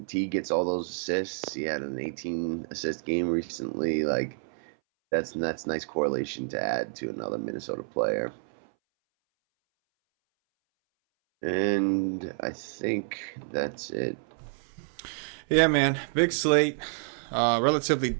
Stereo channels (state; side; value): silent; left; 59 dB below the other